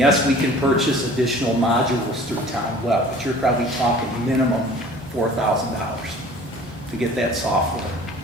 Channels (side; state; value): both; normal; correlation 0.47